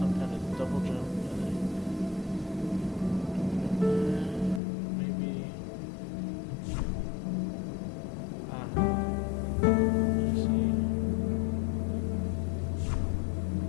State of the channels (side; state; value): right; drops out; at 4.6 s